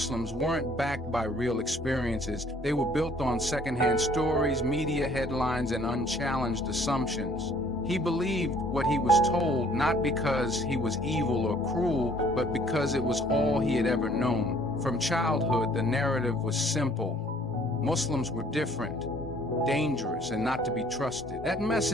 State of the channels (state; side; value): normal; both; correlation 0.58